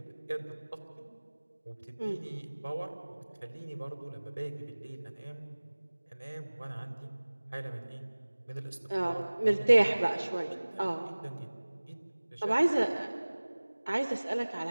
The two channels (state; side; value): inverted; both; correlation -1.00